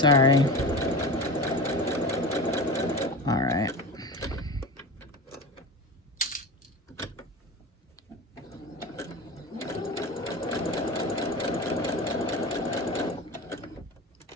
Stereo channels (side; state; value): both; normal; correlation 0.28